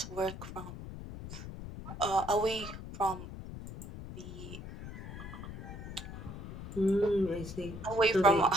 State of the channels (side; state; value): left; noise; rumble, 10 dB below the sound